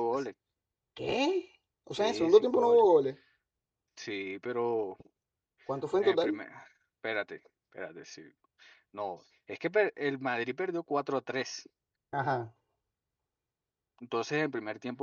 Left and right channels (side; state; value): both; identical; correlation 1.00